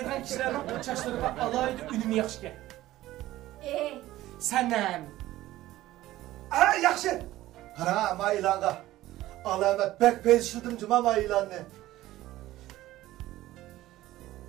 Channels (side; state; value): left; quieter; 15.7 dB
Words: kishilarning chashlariga alohida unumi yaxshi. Sanam. Yaxshi. Qara, men e'longa. Alamat bek belshildim juma men e'lonni.